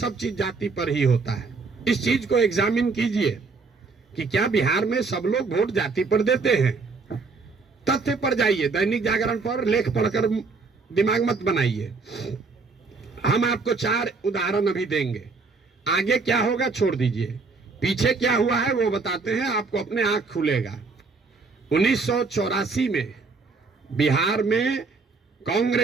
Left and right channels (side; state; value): left; quieter; 4.3 dB